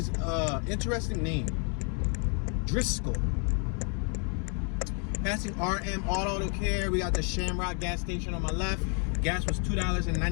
an interesting name. Driscoll. Passing RM Auto Care. We got the Shamrock gas station on my left. Gas was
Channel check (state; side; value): quieter; right; 39.3 dB